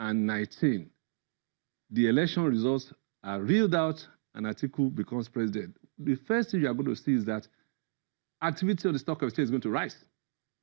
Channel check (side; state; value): left; silent; digital silence